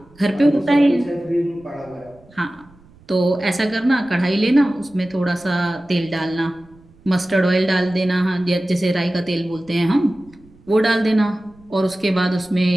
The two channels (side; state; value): right; noise; rumble, 27 dB below the sound